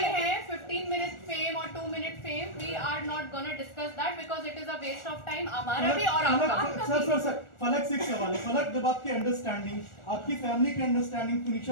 हैं 15 मिनट फेम और 2 minute fame, we are not gonna discuss that because it is a waste of time हमारा भी और आपका। सर फलक से एक सवाल है। फलक, जब आपकी अंडरस्टैंडिंग, आपकी फैमिली की अंडरस्टैंडिंग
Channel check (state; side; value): late; right; 1.4 ms